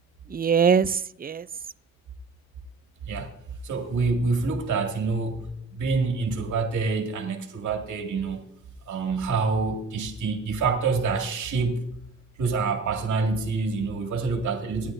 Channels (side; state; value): left; quieter; 4.4 dB